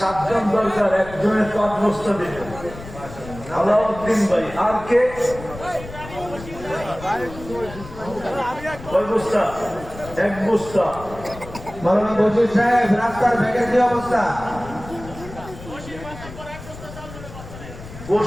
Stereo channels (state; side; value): noise; left; rumble, 14 dB below the sound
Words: জন দরকার, একজনের 5 বস্তা দিবে। আলাউদ্দিন ভাই। আর কে? কয় বস্তা? 1 বস্তা। মাওলানা বশির সাহেব, রাস্তার ব্যাগের কি অবস্থা?